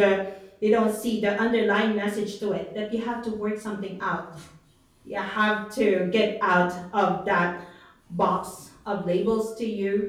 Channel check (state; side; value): identical; both; correlation 1.00